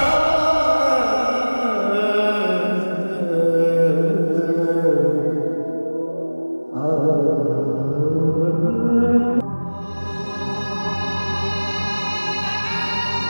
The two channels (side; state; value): both; inverted; correlation -1.00